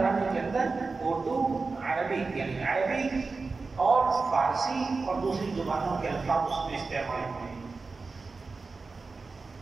کے اندر اردو، عربی یعنی عربی اور فارسی اور دوسری زبانوں کے الفاظ اس میں استعمال ہوتے ہیں.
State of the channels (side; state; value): left; quieter; 4.1 dB